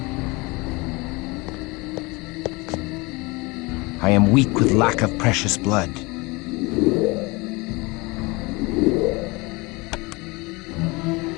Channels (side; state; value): right; quieter; 25.3 dB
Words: I am weak with lack of precious blood.